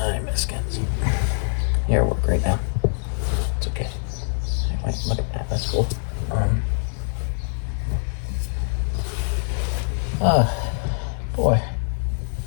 miss Kenzie. You're at work right now. It's okay. Wait, look at that. That's cool. Boy.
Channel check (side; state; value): right; silent; 57 dB below the other